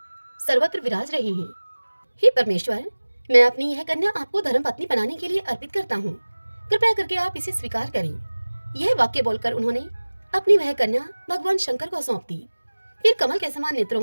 सर्वत्र विराज रहे हैं। हे परमेश्वर, मैं अपनी यह कन्या आपको धर्मपत्नी बनाने के लिए अर्पित करता हूँ, कृपया करके आप इसे स्वीकार करें। यह वाक्य बोलकर उन्होंने अपनी वह कन्या भगवान शंकर को सौंप दी। फिर कमल के समान नेत्रों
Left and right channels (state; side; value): inverted; both; correlation -1.00